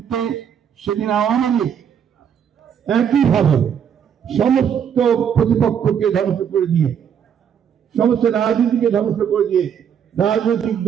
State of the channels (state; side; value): quieter; left; 8.3 dB